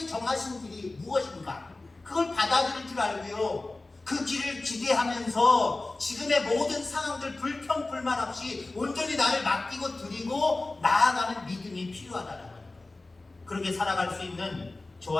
정하신 길이 무엇인가? 그걸 받아들일 줄 알고요. 그 길을 기대하면서 지금의 모든 상황들 불평 불만 없이 온전히 나를 맡기고 드리고 나아가는 믿음이 필요하다는 거예요. 그렇게 살아갈 수 있는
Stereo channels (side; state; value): right; quieter; 3.1 dB